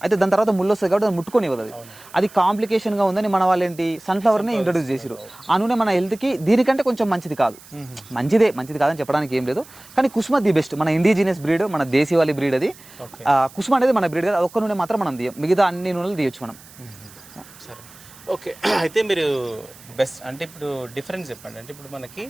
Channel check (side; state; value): right; noise; hiss, 22 dB below the sound